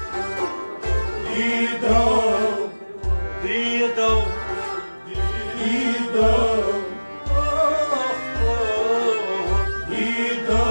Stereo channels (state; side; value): inverted; both; correlation -1.00